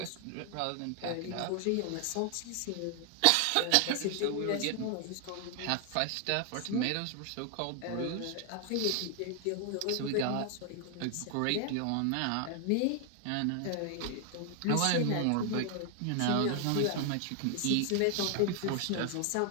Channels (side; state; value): both; different; correlation 0.00